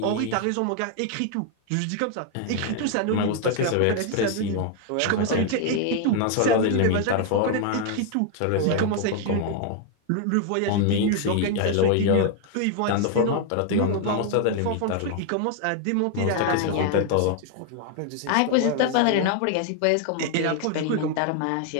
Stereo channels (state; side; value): different; both; correlation 0.00